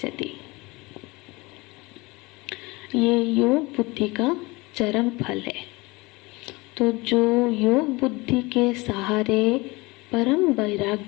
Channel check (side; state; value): right; quieter; 23.6 dB